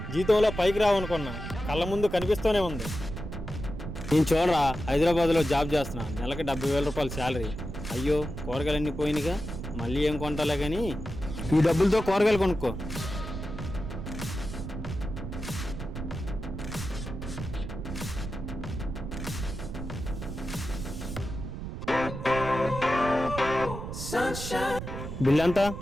జీతంలో పైకి రావనుకున్నా, కళ్ళ ముందు కనిపిస్తూనే ఉంది. నేను చూడరా, హైదరాబాద్లో జాబ్ చేస్తున్నా, నెలకి 70,000 రూపాయలు శాలరీ. అయ్యో కూరగాయలన్నీ పోయినాయిగా, మళ్ళీ ఏం కొంటాలే కానీ ఈ డబ్బులతో కూరగాయలు కొనుక్కో. బిల్ ఎంత?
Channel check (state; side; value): noise; right; rumble, 7 dB below the sound